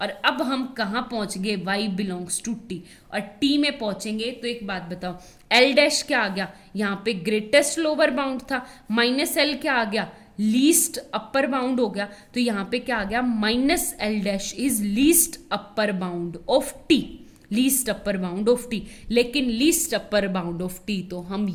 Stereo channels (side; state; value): both; identical; correlation 1.00